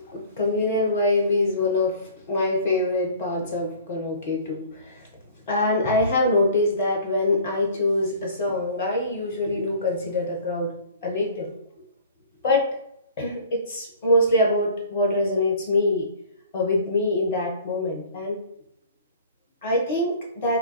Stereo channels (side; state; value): both; inverted; correlation -0.47